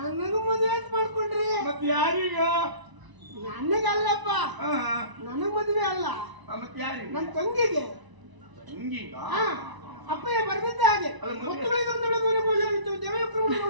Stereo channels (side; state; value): left; late; 1.0 ms